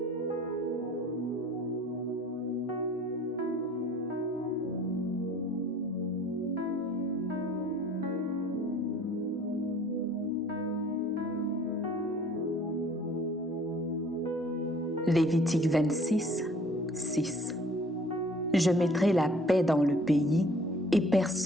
Lévitique 26, 6. Je mettrai la paix dans le pays et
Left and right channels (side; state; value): both; normal; correlation 0.53